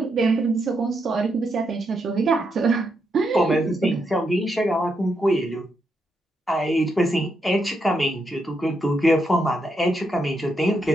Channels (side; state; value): both; normal; correlation 0.81